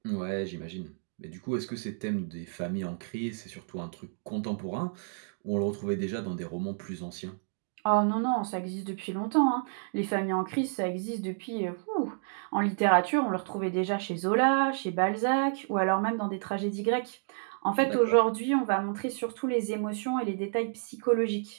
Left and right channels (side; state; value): left; silent; digital silence